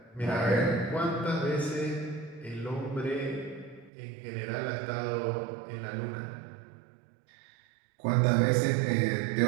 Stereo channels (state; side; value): drops out; left; at 3.9 s